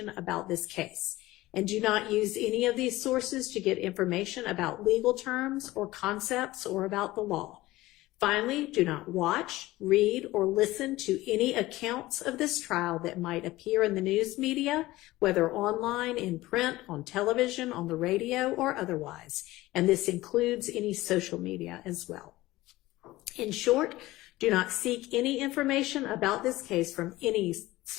about this case. And do not use any of these sources to get information about legal terms or concepts or about the law. Finally, do not watch, read, or listen to any accounts of this trial that might appear in the news media, whether online, in print, on television, on the radio, or otherwise. And this includes any social media as well. In short, do not seek any information about this case from any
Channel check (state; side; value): quieter; right; 18.0 dB